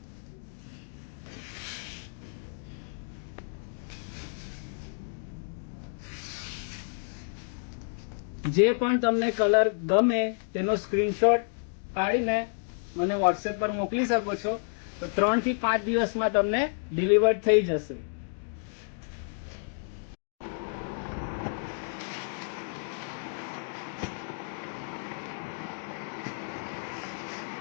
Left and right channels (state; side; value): silent; right; 58 dB below the other